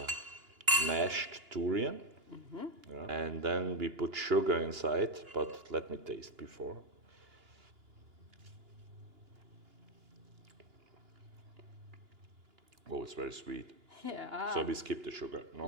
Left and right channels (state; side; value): late; left; 2.9 ms